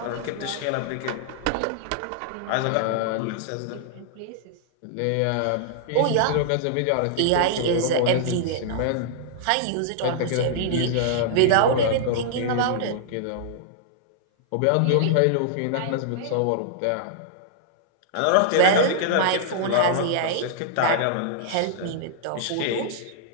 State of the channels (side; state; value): both; different; correlation -0.01